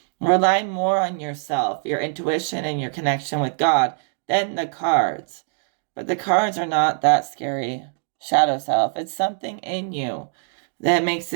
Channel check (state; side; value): silent; left; digital silence